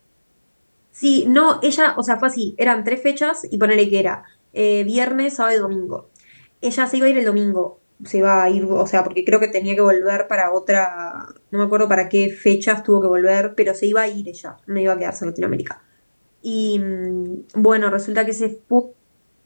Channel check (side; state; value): both; inverted; correlation -1.00